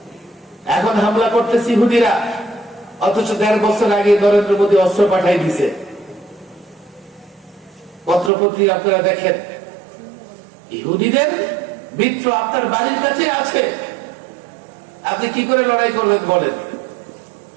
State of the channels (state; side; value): drops out; left; at 8.3 s